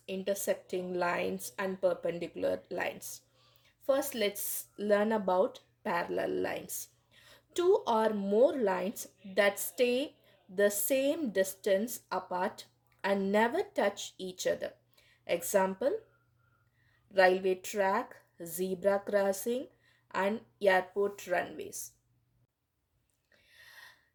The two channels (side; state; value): both; identical; correlation 1.00